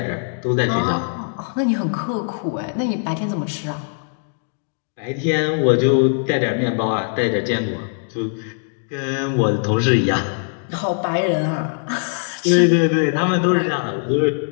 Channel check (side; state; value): right; silent; digital silence